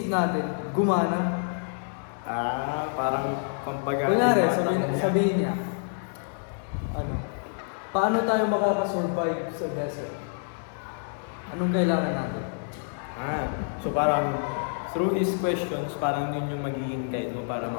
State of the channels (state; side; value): silent; right; digital silence